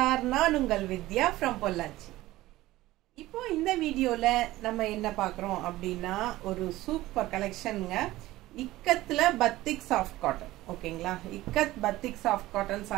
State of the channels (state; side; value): quieter; left; 17.1 dB